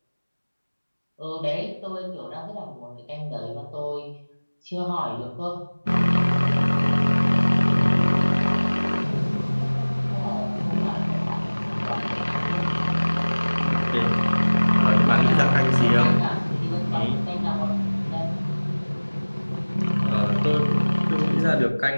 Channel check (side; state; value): both; inverted; correlation -1.00